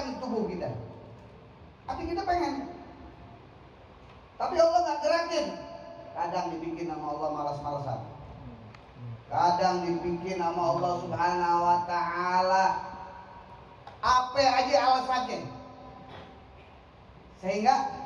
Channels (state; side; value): identical; both; correlation 1.00